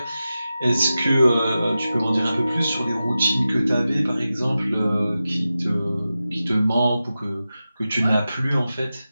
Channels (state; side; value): inverted; both; correlation -0.93